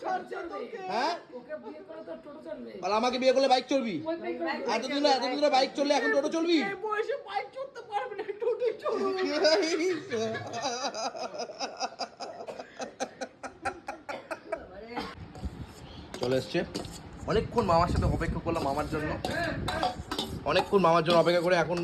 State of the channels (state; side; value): identical; both; correlation 1.00